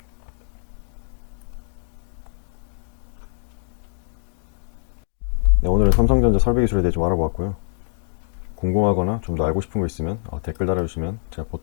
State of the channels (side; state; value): right; silent; digital silence